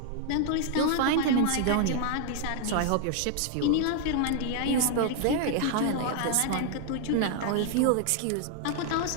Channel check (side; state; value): both; different; correlation 0.00